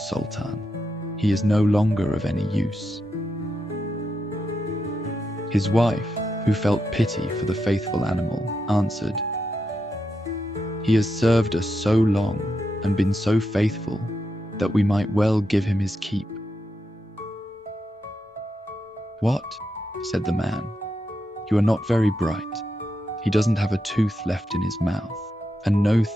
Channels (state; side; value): normal; both; correlation 0.85